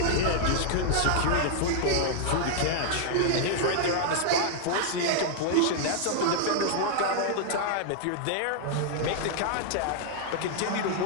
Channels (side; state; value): both; different; correlation 0.00